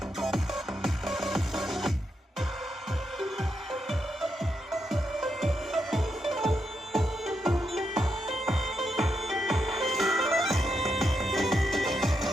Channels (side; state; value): both; normal; correlation 0.82